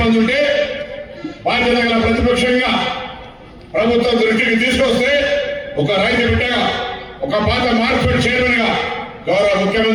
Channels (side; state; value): both; identical; correlation 1.00